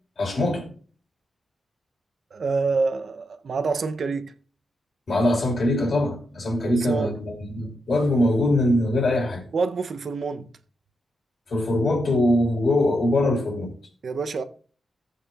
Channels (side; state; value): both; normal; correlation 0.83